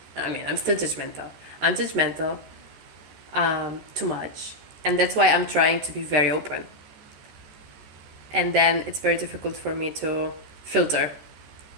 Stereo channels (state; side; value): late; left; 13 ms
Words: still judgmental. I'm judgmental too much. And that's why I'm trying to be very open. And then it's very difficult for me to filter